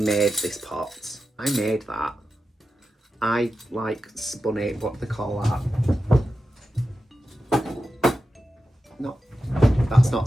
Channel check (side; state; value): both; normal; correlation 0.91